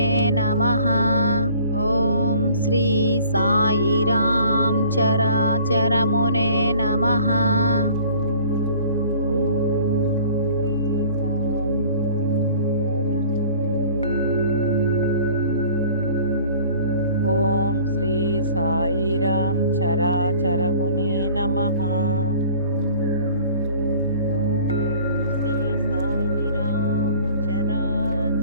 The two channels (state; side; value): inverted; both; correlation -0.50